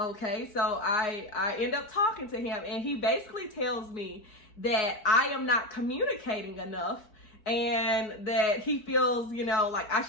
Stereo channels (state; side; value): late; right; 4.7 ms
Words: So I end up talking to him, and he basically tells me that I am not communicating enough, and that he feels, you know, like I